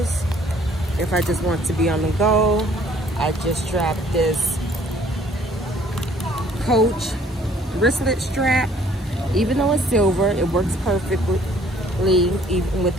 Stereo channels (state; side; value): normal; both; correlation 0.59